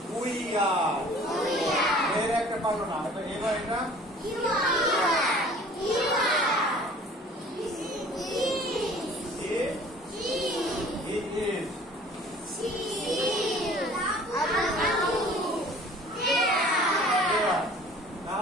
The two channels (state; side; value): normal; both; correlation 0.49